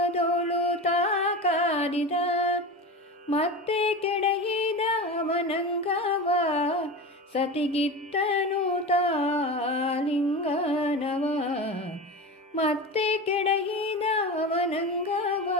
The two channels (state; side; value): normal; both; correlation 0.27